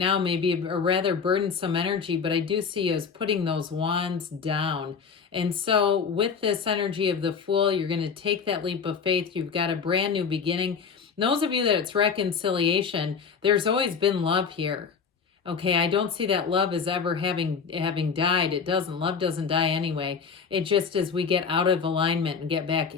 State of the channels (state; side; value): quieter; right; 6.0 dB